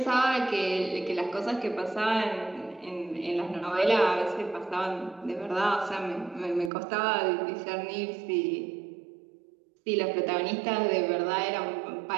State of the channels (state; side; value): drops out; left; at 6.7 s